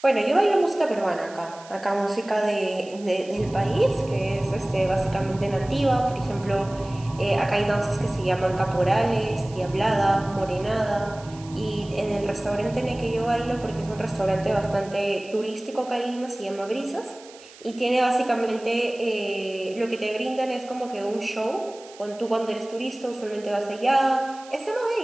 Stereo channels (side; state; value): right; noise; hiss, 21 dB below the sound